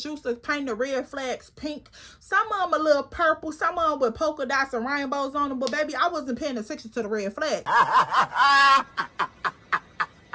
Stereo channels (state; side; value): identical; both; correlation 1.00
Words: used to paint the red flags pink. Some of them a little purple. Some of them with polka dots and rainbows on them. But baby, I wasn't paying attention to the red flag.